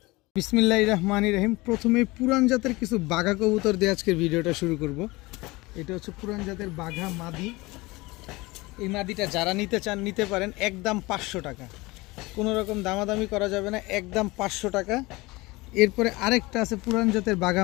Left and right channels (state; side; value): quieter; right; 22.2 dB